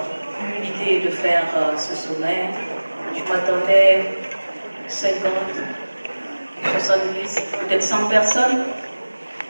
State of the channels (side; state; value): both; inverted; correlation -1.00